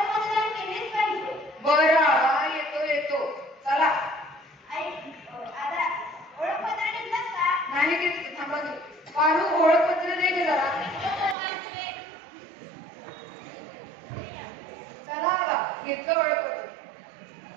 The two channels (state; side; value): drops out; left; at 11.4 s